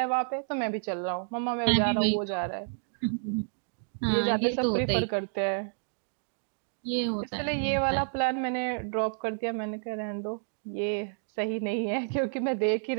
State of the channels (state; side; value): silent; left; digital silence